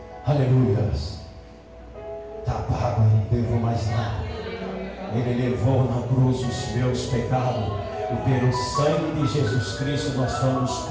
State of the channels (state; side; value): identical; both; correlation 1.00